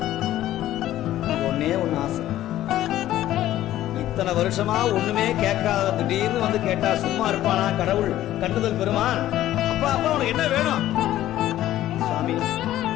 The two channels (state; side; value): quieter; right; 13.7 dB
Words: ஒன்னே ஒண்ணு ஆசை. இத்தனை வருஷமா ஒண்ணுமே கேட்காத திடீர்னு வந்து கேட்டா சும்மா இருப்பானா கடவுள் கண்டுதல் பெருமான்? அப்பா அப்பா உனக்கு என்ன வேணும்? சுவாமி,